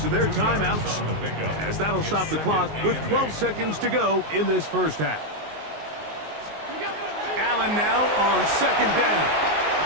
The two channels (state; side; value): late; left; 19 ms